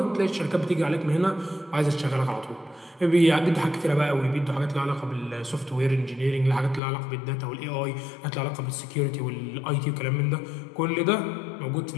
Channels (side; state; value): right; drops out; at 6.8 s